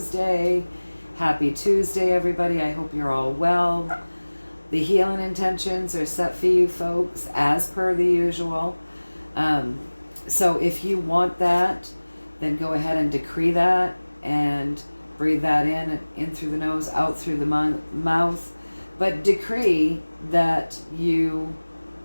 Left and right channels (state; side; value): inverted; both; correlation -1.00